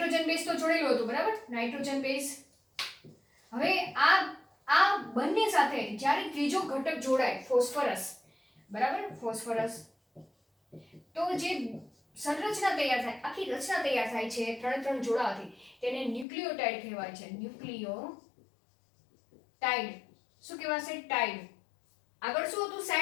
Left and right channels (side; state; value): right; drops out; at 16.2 s